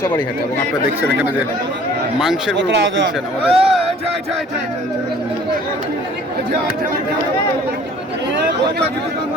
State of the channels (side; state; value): both; normal; correlation 0.52